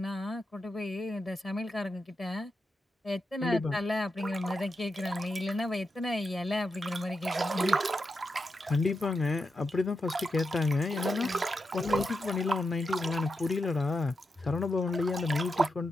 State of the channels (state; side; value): normal; both; correlation 0.86